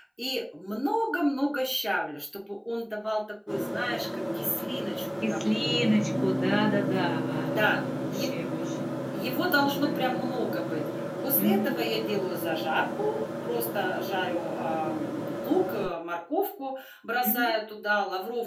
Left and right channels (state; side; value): identical; both; correlation 1.00